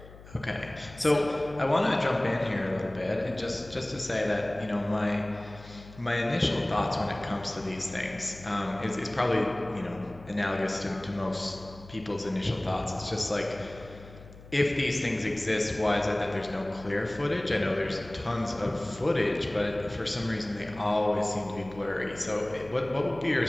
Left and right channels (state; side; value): noise; left; hum, 18 dB below the sound